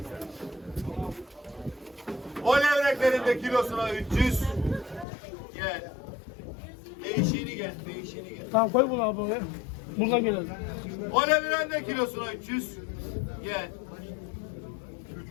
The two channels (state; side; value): drops out; right; at 5.1 s